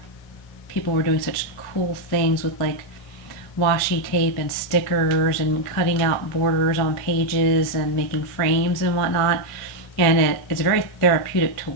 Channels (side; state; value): right; late; 1.5 ms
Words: people were doing such cool things with, like, washi tape and stickers and cutting out borders on pages and making frames and whatnot. And it's very therapeutic to